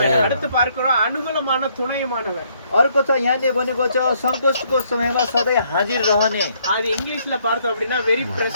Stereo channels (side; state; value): both; inverted; correlation -0.69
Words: அடுத்து பார்க்கிறோம் அனுகூலமான துணையுமானவர். अर्को छ यहाँले भनेको छ सङ्कटको समयमा सधैँ हाजिर रहने। அது इङ्ग्लिஷ்ல பார்த்தோம் அப்படின்னா வெரி